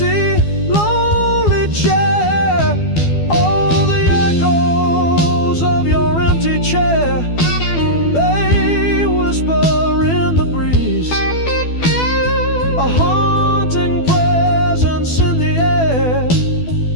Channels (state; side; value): late; right; 12 ms